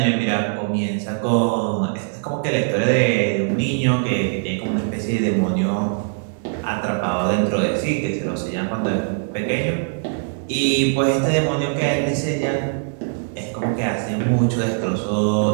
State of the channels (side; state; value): left; silent; 65 dB below the other